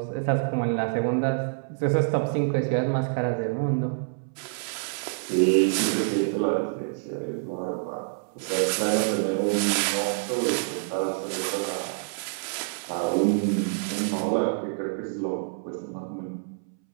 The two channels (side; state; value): left; silent; 60 dB below the other